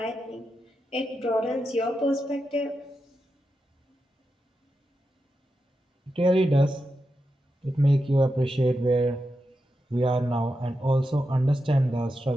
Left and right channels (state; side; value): normal; both; correlation 0.88